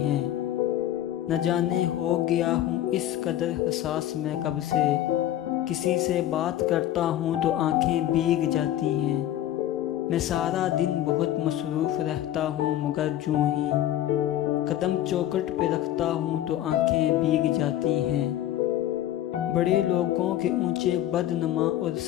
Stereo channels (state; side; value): quieter; right; 12.6 dB